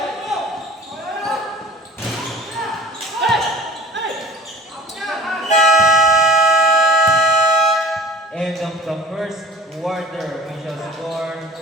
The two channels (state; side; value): normal; both; correlation 0.42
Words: End of the first quarter, we shall score